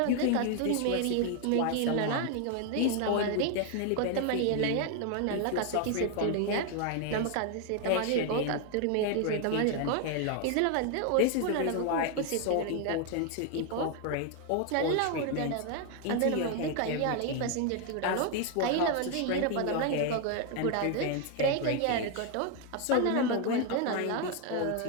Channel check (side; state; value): both; different; correlation 0.01